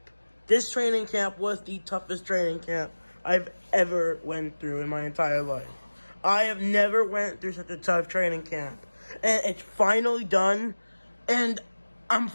This training camp was the toughest training camp I've ever went through in my entire life. I have never went through such a tough training camp. And it's finally done, and I'm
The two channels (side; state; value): both; inverted; correlation -1.00